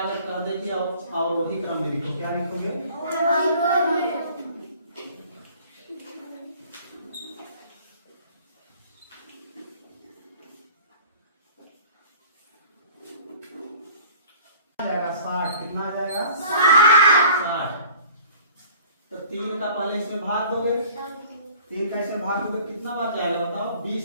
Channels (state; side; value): inverted; both; correlation -0.49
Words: कर दे कि और वही क्रम में लिखो, क्या लिखोगे? जाएगा 60, कितना आ जाएगा? 60। तो 3 का पहले इसमें भाग दोगे, 3 का इसमें भाग दोगे, कितना बार जाएगा बताओ?